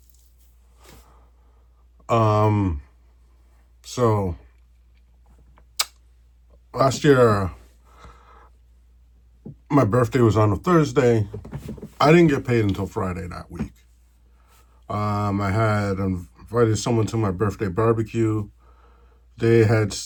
Um, so last year, my birthday was on a Thursday. I didn't get paid until Friday that week. I had invited someone to my birthday barbecue. They had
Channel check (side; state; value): both; identical; correlation 1.00